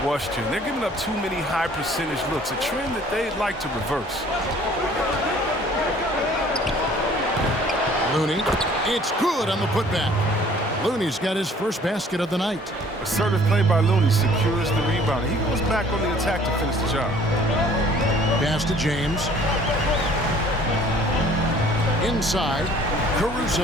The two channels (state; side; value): normal; both; correlation 0.54